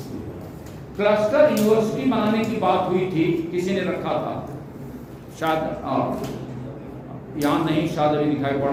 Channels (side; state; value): both; identical; correlation 1.00